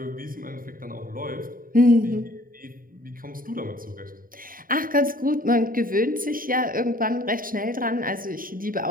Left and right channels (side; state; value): left; late; 0.41 ms